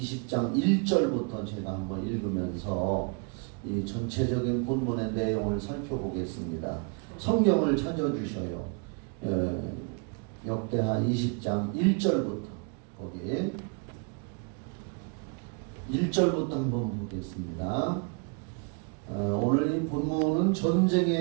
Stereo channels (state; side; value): quieter; left; 36.8 dB